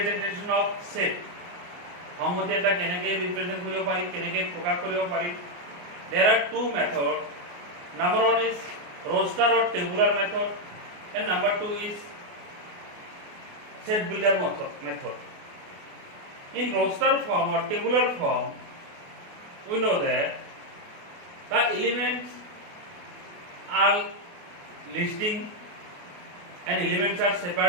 of set সংহতি এটা কেনেকৈ ৰিপ্ৰেজেন্ট কৰিব পাৰি কেনেকৈ প্ৰকাশ কৰিব পাৰি there are two methods number one is roster or tabular method and number two is set builder method in roster form or tabular form we know that the elements are listing and elements are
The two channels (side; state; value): left; late; 28 ms